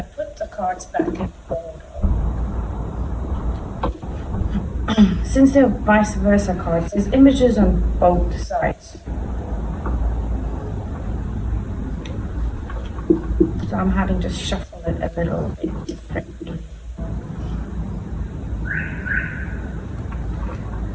put the cards back in order. Since they're vice versa cards, there's images on both sides. So I'm having to shuffle it a little bit differently.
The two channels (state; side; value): identical; both; correlation 1.00